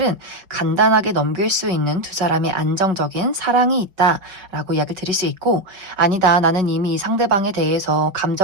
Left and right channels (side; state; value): left; late; 5.4 ms